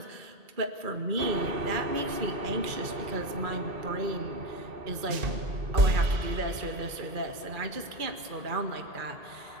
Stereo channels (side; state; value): left; late; 2.3 ms